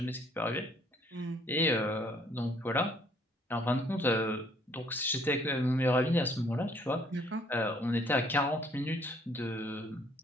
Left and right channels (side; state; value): both; normal; correlation 0.63